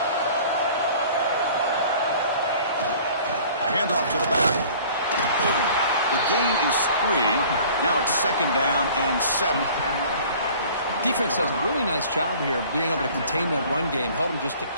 Handoff to the back. The gain is 3. Now it's 2nd down and 7. Defense does a really nice job here of being able to contain that run game. Held him just to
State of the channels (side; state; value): both; inverted; correlation -0.49